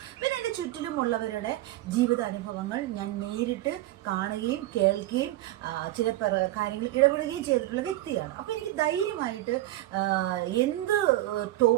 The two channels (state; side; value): quieter; left; 16.0 dB